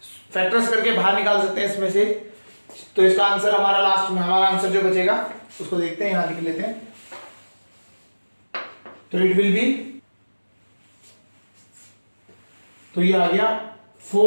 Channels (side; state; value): both; inverted; correlation -1.00